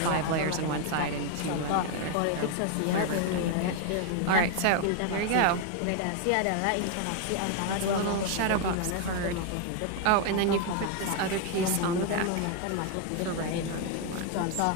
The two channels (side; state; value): both; different; correlation 0.01